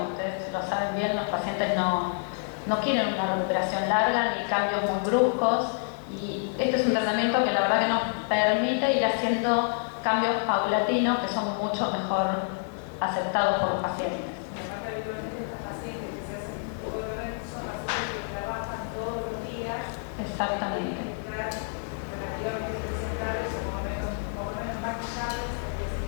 ustedes lo saben bien, los pacientes no quieren una recuperación larga ni cambios muy bruscos y este es un tratamiento que la verdad que nos permite ir haciendo cambios paulatinos que son mucho mejor aceptados por los pacientes. Exactamente.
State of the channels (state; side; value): silent; right; 57 dB below the other